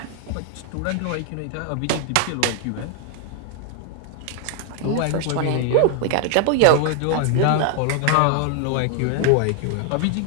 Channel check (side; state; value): both; different; correlation 0.00